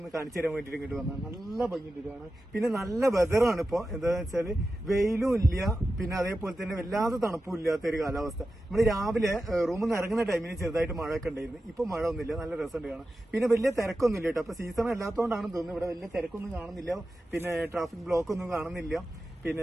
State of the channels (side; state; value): both; normal; correlation 0.92